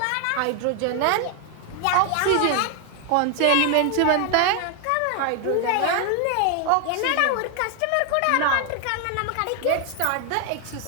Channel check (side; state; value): both; different; correlation 0.00